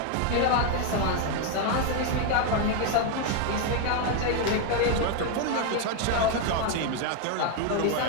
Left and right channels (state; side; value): different; both; correlation 0.01